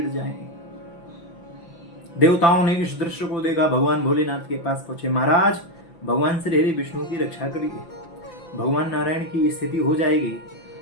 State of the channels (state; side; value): late; right; 5.9 ms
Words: जाएं। देवताओं ने इस दृश्य को देखा, भगवान भोलेनाथ के पास पहुंचे। महाराज, भगवान श्री हरि विष्णु की रक्षा करिए। भगवान नारायण की स्थिति हो जाएगी